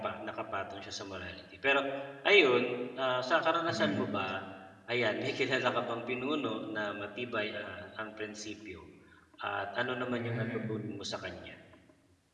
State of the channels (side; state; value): both; identical; correlation 1.00